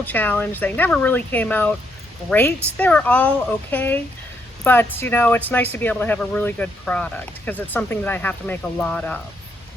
challenge. They never really came out great. They were all okay, but you know, it's nice to be able to have a really good product because it's something that I have to make a lot of.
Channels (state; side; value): normal; both; correlation 0.75